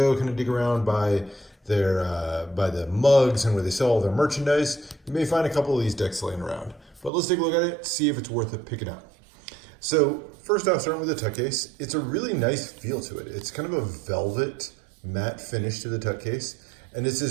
kind of dig around by by the mugs and where they sell all their merchandise, you may find a couple of these decks laying around. But let's take a look at it, see if it's worth it picking up. So first off, starting with the tuck case, it's a really nice feel to it. It's kind of a velvet matte finish to the tuck case. And this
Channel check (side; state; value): left; drops out; at 7.1 s